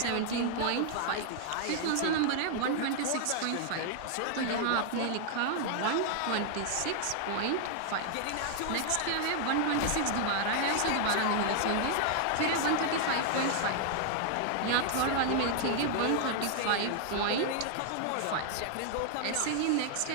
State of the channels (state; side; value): different; both; correlation 0.00